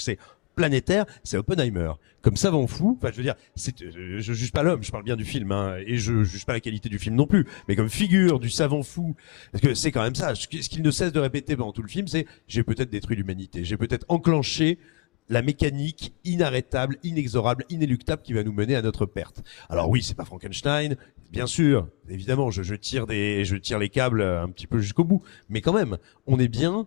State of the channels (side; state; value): right; quieter; 36.5 dB